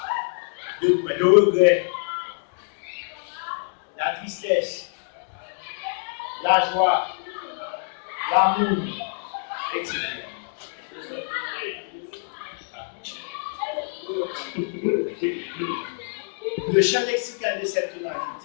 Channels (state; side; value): silent; right; digital silence